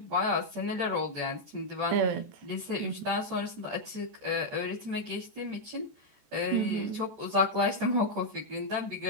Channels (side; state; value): left; late; 14 ms